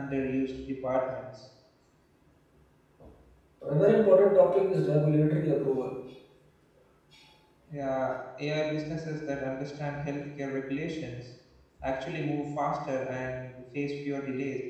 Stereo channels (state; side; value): identical; both; correlation 1.00